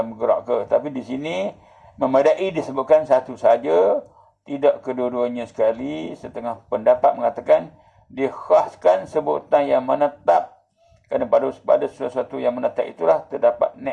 bergerak ke. Tapi di sini memadai disebutkan satu saja, tidak kedua-duanya sekali. Setengah pendapat mengatakan dikhaskan sebutan yang menetap, kerana pada sesuatu yang menetap itulah terdapat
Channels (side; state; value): both; identical; correlation 1.00